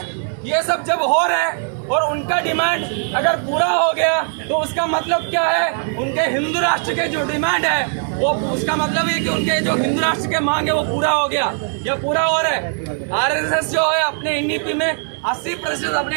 ये सब जब हो रहे हैं और उनका डिमांड अगर पूरा हो गया तो उसका मतलब क्या है, उनके हिंदू राष्ट्र के जो डिमांड है वो उसका मतलब ये कि उनके जो हिंदू राष्ट्र के मांग है वो पूरा हो गया या पूरा हो रहा है। आरएसएस जो है अपने नीति में 80%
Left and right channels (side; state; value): left; silent; 58 dB below the other